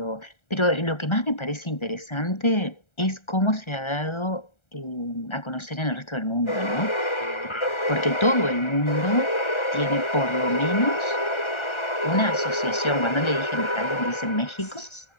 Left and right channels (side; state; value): right; late; 1.3 ms